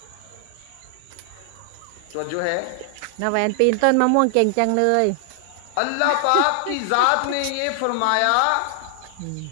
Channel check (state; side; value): different; both; correlation 0.00